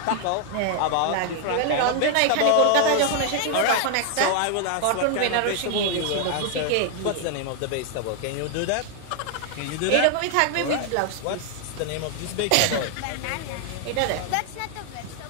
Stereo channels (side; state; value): both; different; correlation 0.00